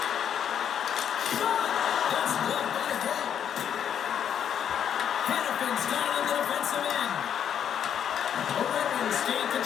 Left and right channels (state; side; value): quieter; right; 8.9 dB